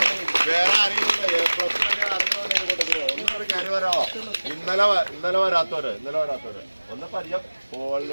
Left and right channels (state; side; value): inverted; both; correlation -1.00